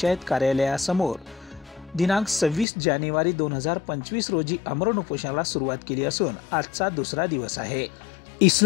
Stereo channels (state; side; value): drops out; right; at 2.7 s